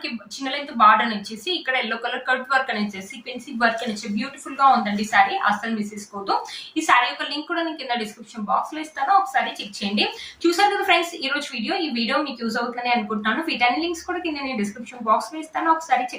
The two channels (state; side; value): identical; both; correlation 1.00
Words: చిన్న లెంత్ బార్డర్ వచ్చేసి ఇక్కడ ఎల్లో కలర్ కట్ వర్క్ అని ఇచ్చేసి సీక్వెన్సీ వర్క్ అని ఇచ్చి బ్యూటిఫుల్ గా ఉందండి శారీ, అస్సలు మిస్ చేసుకోవద్దు. ఈ శారీ యొక్క లింక్ కూడా నేను కింద డిస్క్రిప్షన్ బాక్స్ లో ఇస్తాను, ఒకసారి చెక్ చేయండి. చూసారు కదా ఫ్రెండ్స్, ఈ రోజు ఈ వీడియో మీకు యూజ్ అవుతుందని అనుకుంటున్నాను. వీటన్ని లింక్స్ కూడా కింద నేను డిస్క్రిప్షన్ బాక్స్ లో ఇస్తాను, ఒకసారి